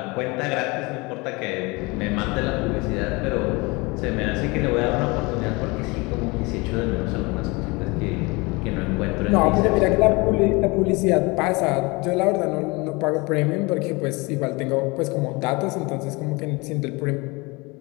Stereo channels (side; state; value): right; quieter; 25.9 dB